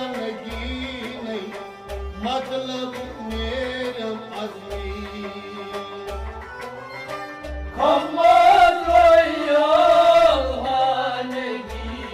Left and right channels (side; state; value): both; identical; correlation 1.00